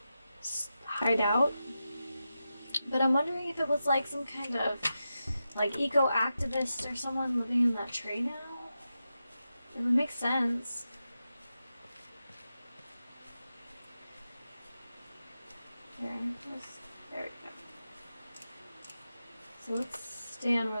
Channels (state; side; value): inverted; both; correlation -0.90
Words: hide out. But I'm wondering if it was like some kind of like eco-activist or someone living in that tree now. It would make sense. There we go. So let's stand